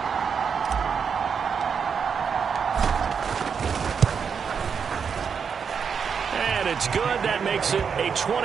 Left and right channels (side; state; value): left; quieter; 6.5 dB